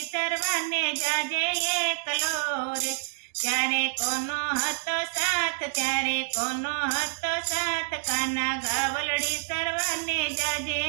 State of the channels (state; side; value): silent; left; digital silence